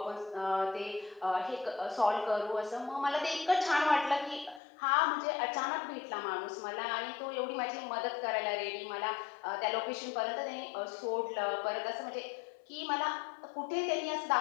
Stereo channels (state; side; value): drops out; right; at 4.6 s